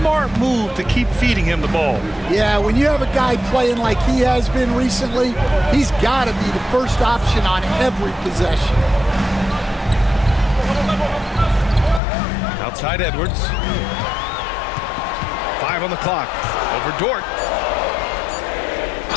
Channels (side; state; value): right; drops out; at 12.0 s